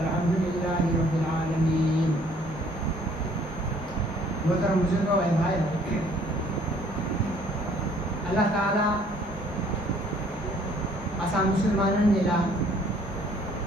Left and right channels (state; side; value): normal; both; correlation 0.59